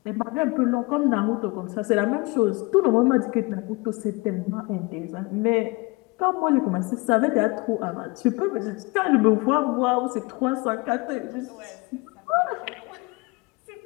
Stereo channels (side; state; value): right; quieter; 25.3 dB